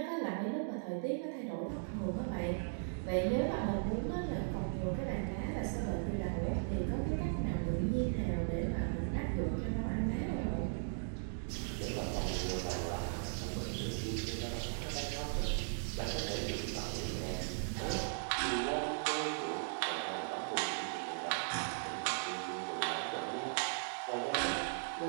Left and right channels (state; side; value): silent; left; digital silence